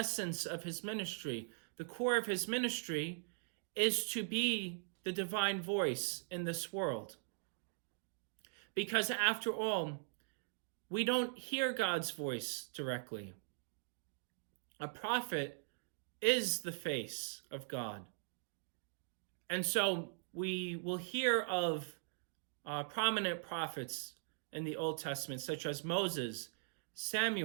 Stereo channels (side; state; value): left; silent; digital silence